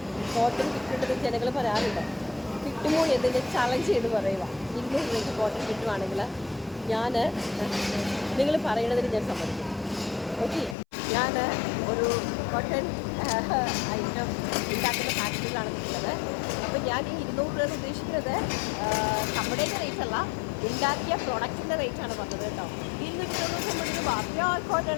കോട്ടൺ കിട്ടുന്നുണ്ടെന്ന് ജനങ്ങൾ പറയാറുണ്ട്. കിട്ടുമോ എന്നതിൻ്റെ ചലഞ്ച് ചെയ്ത് പറയുക. 200 രൂപയ്ക്ക് കോട്ടൺ കിട്ടുവാണെങ്കിൽ നിങ്ങൾ പറയണതിന് ഞാൻ സമ്മതിക്കും. ഓക്കെ, ഞാൻ ഒരു കോട്ടൺ ഐറ്റം ഉണ്ടാക്കുന്ന ഫാക്ടറിയിലാണ് നിൽക്കുന്നത്. അപ്പോൾ ഞാൻ ഈ 200 രൂപ ഉദ്ദേശിക്കുന്നത് നമ്മുടെയൊക്കെ റേറ്റ് അല്ല, ഉണ്ടാക്കിയ പ്രൊഡക്റ്റിൻ്റെ റേറ്റാണ് പറഞ്ഞത് കേട്ടോ. 290 രൂപ പ്യോർ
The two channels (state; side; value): drops out; right; at 10.8 s